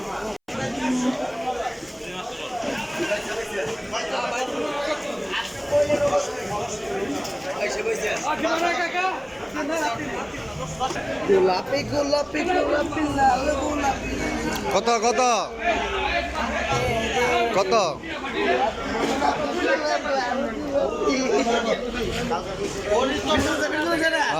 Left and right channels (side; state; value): both; identical; correlation 1.00